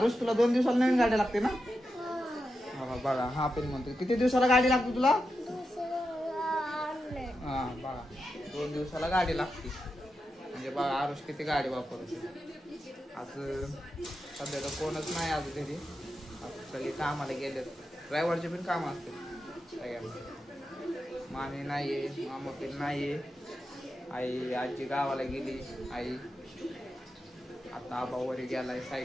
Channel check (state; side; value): normal; both; correlation 0.88